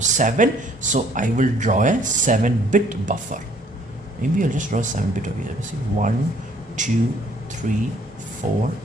7. So I will draw a 7-bit buffer. Maybe I'll just draw a 7-bit over here. Let's see. 1, 2, 3, 4,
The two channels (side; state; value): both; normal; correlation 0.61